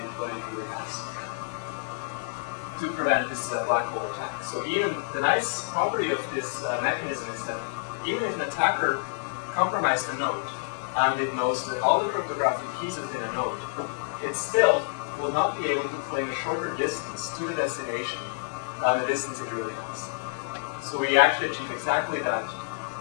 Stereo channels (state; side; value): silent; right; digital silence